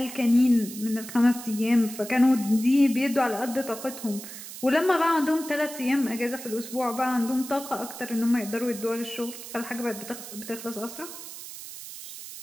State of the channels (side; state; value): right; noise; hiss, 12 dB below the sound